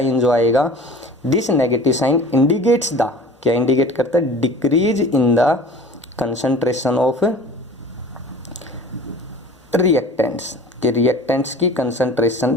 जो आएगा, this negative sign indicates the, क्या इंडिकेट करता है, decrease in the concentration of reactants, कि रिएक्टेंट्स की कंसंट्रेशन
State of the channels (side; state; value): both; normal; correlation 0.42